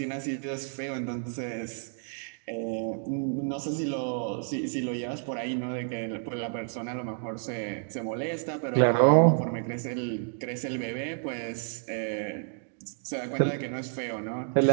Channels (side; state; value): left; silent; 58 dB below the other